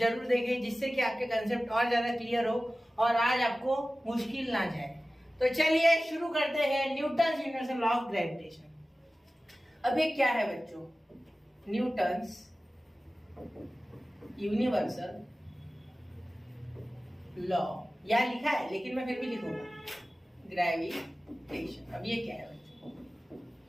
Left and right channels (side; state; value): both; normal; correlation 0.96